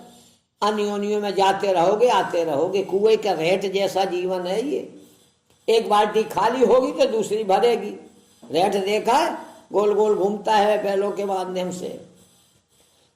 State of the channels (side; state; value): both; identical; correlation 1.00